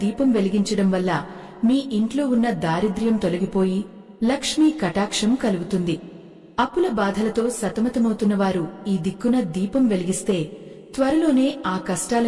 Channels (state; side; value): identical; both; correlation 1.00